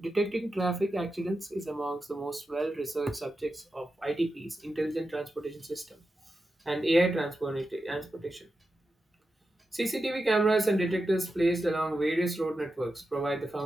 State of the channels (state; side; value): normal; both; correlation 0.90